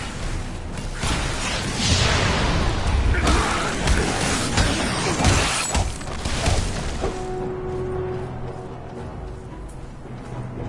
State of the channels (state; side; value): identical; both; correlation 1.00